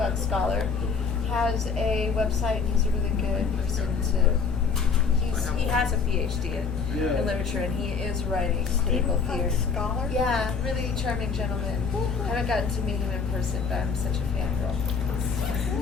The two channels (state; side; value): quieter; right; 5.5 dB